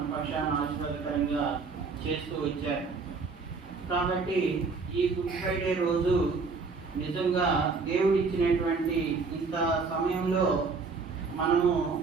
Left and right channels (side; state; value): left; quieter; 4.5 dB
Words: పక్షాన ఆశీర్వాదకరంగా చేస్తూ వచ్చారు. కాబట్టి ఈ గుడ్ ఫ్రైడే రోజు నిజంగా దేవుడు ఇచ్చినటువంటి ఇంత సమయంలో మనము